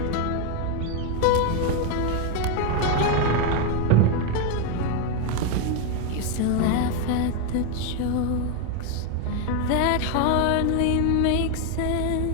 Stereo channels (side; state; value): both; different; correlation 0.01